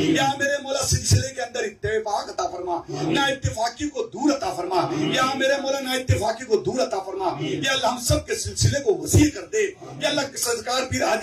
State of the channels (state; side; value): identical; both; correlation 1.00